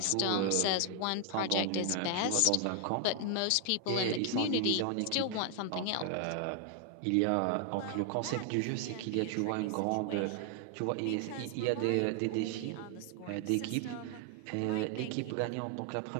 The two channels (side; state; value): both; different; correlation 0.00